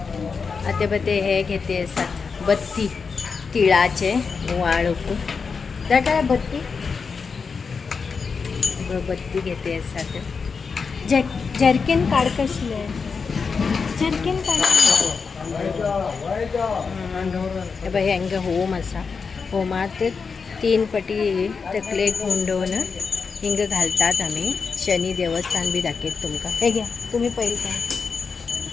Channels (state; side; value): quieter; right; 5.3 dB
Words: आता बते हे घेते असतात बत्ती तिळाचे वाळूक त्या काय बत्ती बत्ती घेते असतात. जर्किन काढ कशी आहे. जर्किन काढ बाई हंग होम असा होमात 3 पटी तकले गुंडवून हिंग घालतात. आम्ही शनी देवस्थान बी दाखवत तुमका. हे घ्या तुम्ही पहिले काय